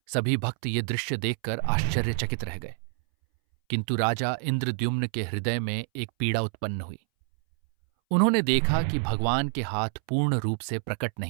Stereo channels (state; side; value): silent; left; 60 dB below the other